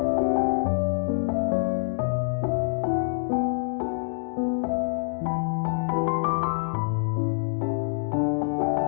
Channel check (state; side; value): silent; right; digital silence